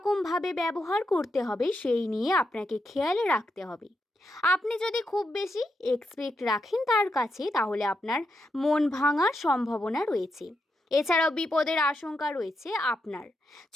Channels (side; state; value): both; normal; correlation 0.84